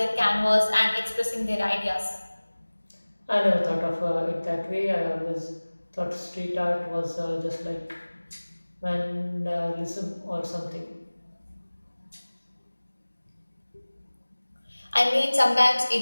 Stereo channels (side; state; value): both; inverted; correlation -1.00